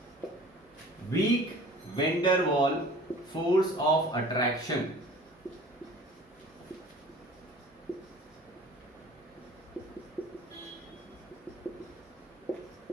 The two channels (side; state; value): both; normal; correlation 0.46